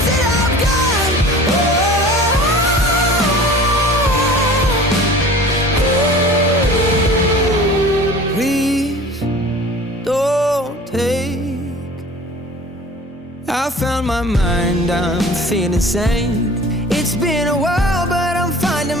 that I've got. Please don't take. I found my mind, I'm feeling sane. It's been a while, but I'm finding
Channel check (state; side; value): normal; both; correlation 0.42